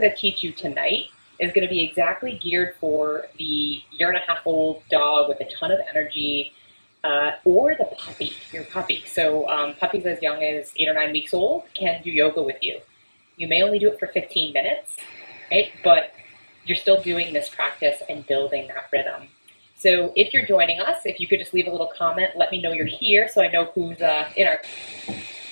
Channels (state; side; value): inverted; both; correlation -1.00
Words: to teach you tonight is going to be exactly geared for the year-and-a-half-old dog with a ton of energy, or the puppy, your puppy. So puppies as young as 8 or 9 weeks old can do yoga with you. You may only do it for 15 minutes, right? But you're still doing this practice and building that rhythm. So if you're joining us, if you could just leave a little comment, let me know you're here so I know who's in our...